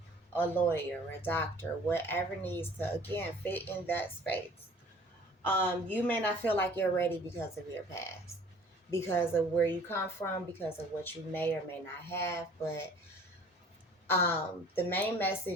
a lawyer, a doctor, whatever needs to, again, fit in that space. You may not feel like you're ready because of your past, because of where you come from, because of what you may or may not have. But the main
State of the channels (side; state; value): both; normal; correlation 0.50